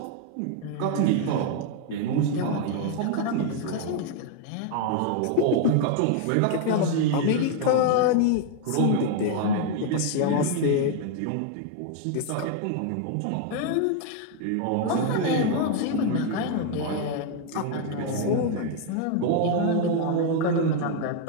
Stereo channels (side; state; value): both; different; correlation 0.00